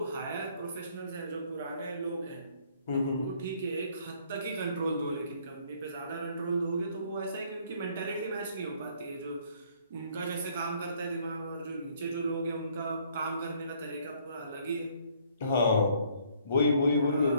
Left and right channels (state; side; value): inverted; both; correlation -0.63